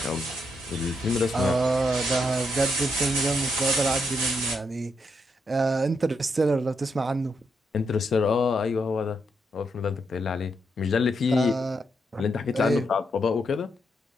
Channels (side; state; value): both; normal; correlation 0.80